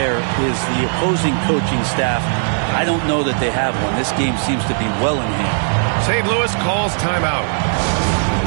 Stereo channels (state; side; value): silent; left; digital silence